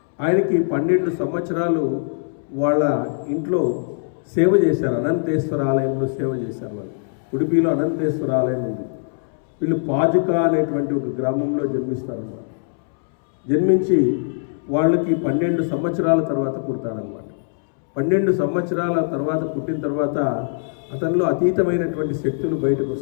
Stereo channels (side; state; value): right; silent; 65 dB below the other